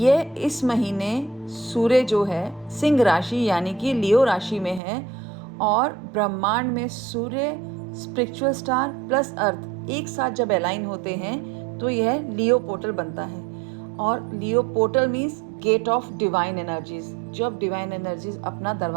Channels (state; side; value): drops out; left; at 4.8 s